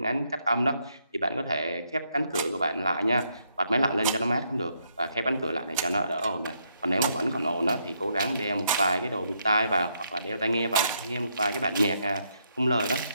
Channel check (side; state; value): both; inverted; correlation -0.76